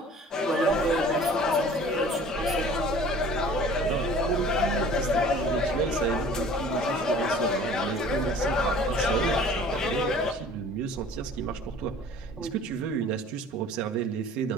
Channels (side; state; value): both; normal; correlation 0.48